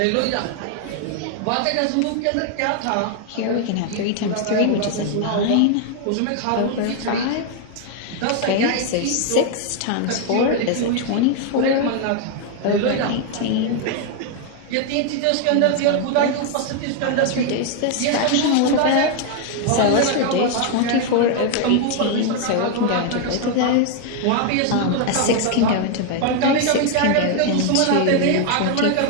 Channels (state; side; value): different; both; correlation 0.00